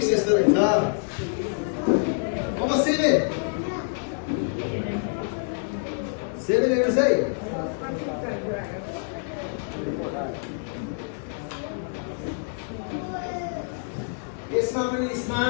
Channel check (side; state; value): right; silent; digital silence